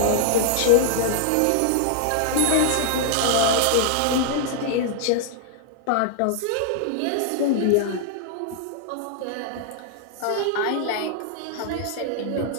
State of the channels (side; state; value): both; different; correlation -0.01